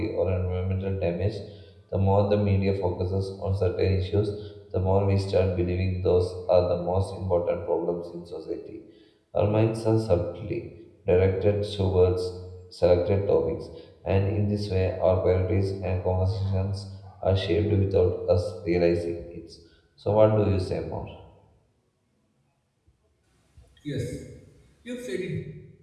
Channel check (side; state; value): both; identical; correlation 1.00